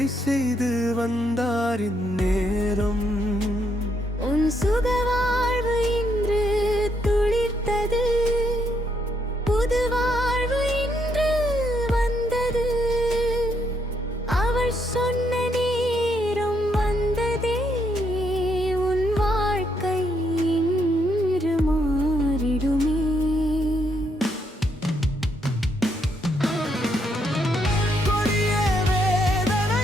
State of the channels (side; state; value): both; normal; correlation 0.75